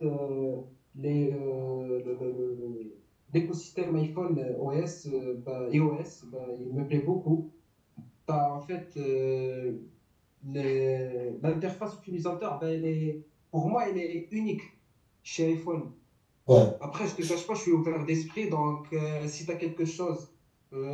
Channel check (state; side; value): identical; both; correlation 1.00